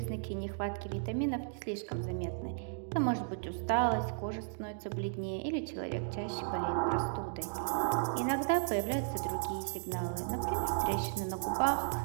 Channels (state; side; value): silent; left; digital silence